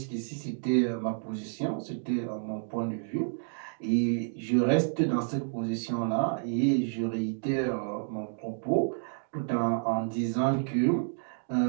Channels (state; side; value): silent; left; digital silence